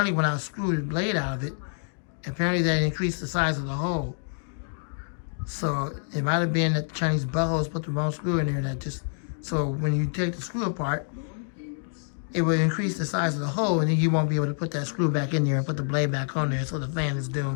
screwed the blade out of it, apparently that increased the size of the hole. So it might have been that the Chinese buttholes put the wrong screw in there. So when you take the screw apart, it will increase the size of the hole, and then you won't be able to put that screw back in there and put the blade back on there. So the fan is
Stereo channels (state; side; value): silent; right; digital silence